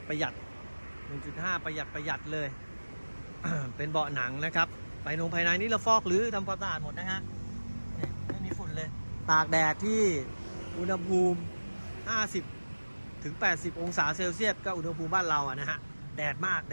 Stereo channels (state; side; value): inverted; both; correlation -1.00